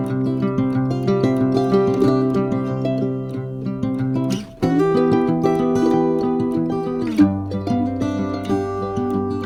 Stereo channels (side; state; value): both; identical; correlation 1.00